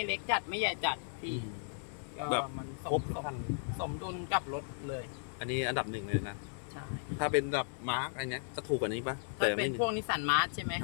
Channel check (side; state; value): right; silent; 54 dB below the other